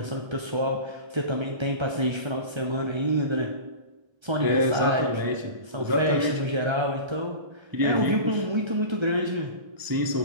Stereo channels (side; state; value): left; late; 1.3 ms